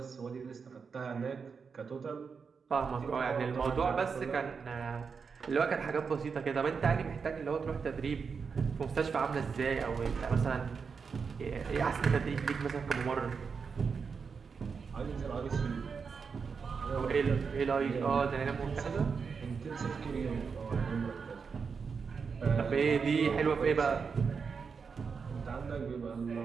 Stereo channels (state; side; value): quieter; left; 5.6 dB